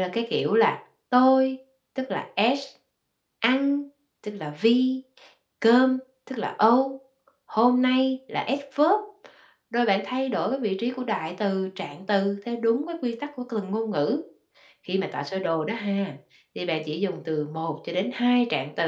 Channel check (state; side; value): identical; both; correlation 1.00